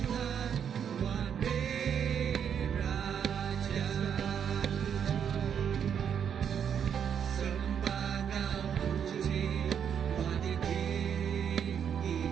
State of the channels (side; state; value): left; quieter; 8.1 dB